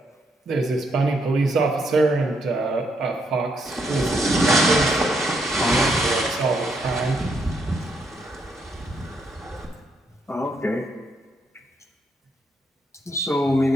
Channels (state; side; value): normal; both; correlation 0.76